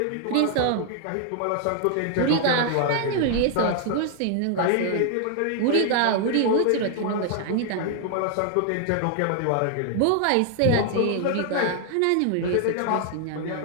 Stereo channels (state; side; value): different; both; correlation 0.00